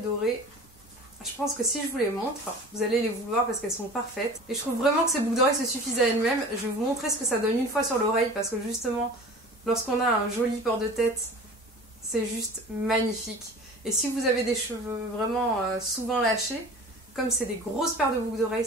Je pense que si je vous les montre, vous allez les vouloir parce qu'elles sont parfaites. Et je trouve vraiment que ces boucles d'oreilles se suffisent à elles-mêmes. Je vais vous montrer ce que ça donne une fois sur l'oreille parce que justement, lorsqu'on a un joli port de tête, c'est juste magnifique. Et si vous avez des cheveux vraiment souvent lâchés, comme c'est des grosses paires de boucles d'oreilles,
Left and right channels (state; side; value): normal; both; correlation 0.40